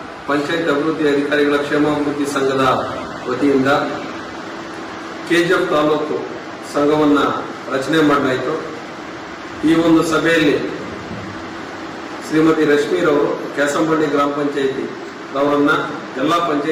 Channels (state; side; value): identical; both; correlation 1.00